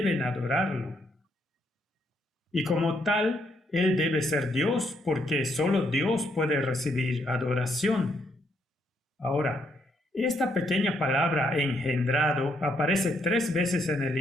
adorarlo. Y como tal, Él debe ser Dios, porque solo Dios puede recibir adoración. Ahora, esta pequeña palabra engendrado aparece 3 veces en el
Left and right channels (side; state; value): both; normal; correlation 0.74